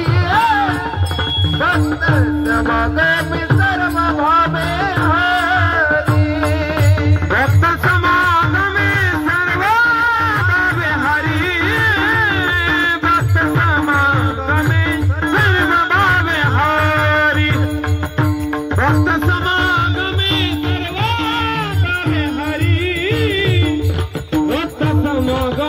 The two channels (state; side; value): identical; both; correlation 1.00